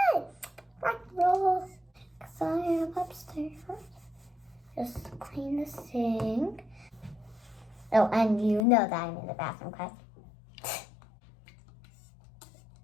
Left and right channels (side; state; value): right; drops out; at 8.7 s